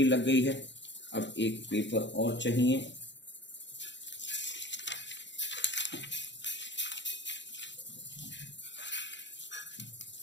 लग गई है। अब एक पेपर और चाहिए।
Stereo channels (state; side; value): late; right; 0.52 ms